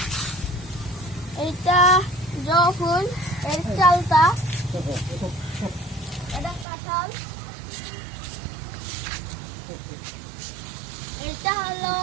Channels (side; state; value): left; drops out; at 6.7 s